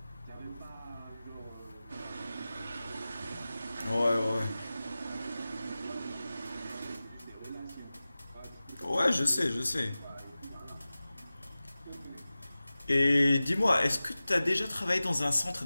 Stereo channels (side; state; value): both; inverted; correlation -0.96